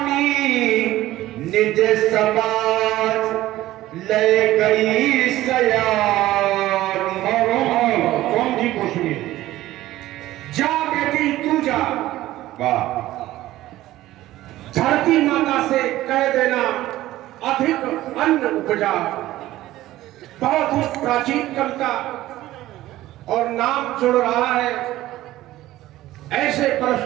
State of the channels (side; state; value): left; quieter; 15.6 dB